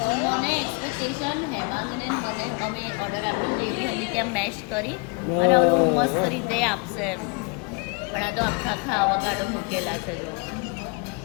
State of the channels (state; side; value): quieter; right; 32.1 dB